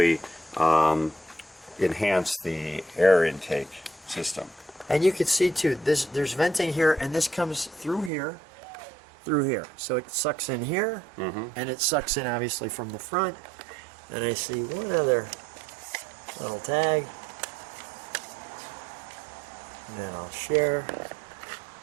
enhance the air intake system. And you can see too, there's venting here, and this comes through here. So it sucks in here, and it sucks in obviously from the front. And I see one other little tag. And then I'll share.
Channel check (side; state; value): left; drops out; at 8.1 s